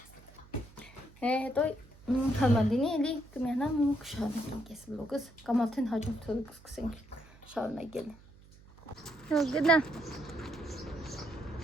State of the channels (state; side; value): noise; right; hum, 23 dB below the sound